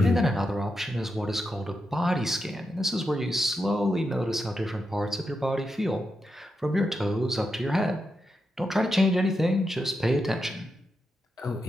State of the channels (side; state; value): both; normal; correlation 0.86